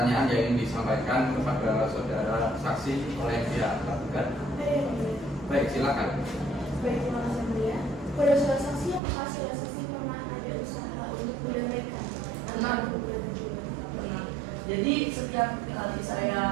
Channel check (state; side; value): drops out; left; at 9.0 s